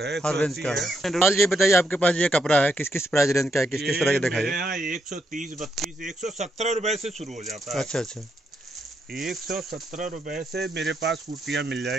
हर रेंज का है। ये बताइए, आपके पास ये कपड़ा है, किस किस प्राइस रेंज का है, किस किस तरह का दिखाइए? यहाँ 130, 32, 117 रुपए से शुरू हो जाता है। अच्छा अच्छा, 117 रुपए से मेरे पास कुर्तियाँ मिल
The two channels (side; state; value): both; normal; correlation 0.79